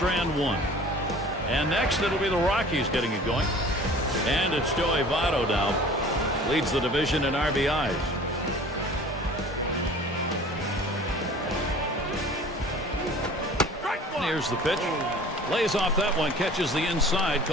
1. And next it'll be the Rockies getting it going. And it's Joey Votto now. Leads the division in RBIs. Here's the pitch. Lays off that one. Catches the inside.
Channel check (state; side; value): normal; both; correlation 0.45